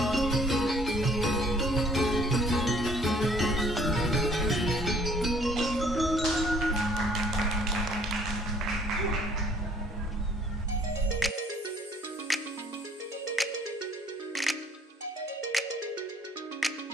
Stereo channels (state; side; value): normal; both; correlation 0.59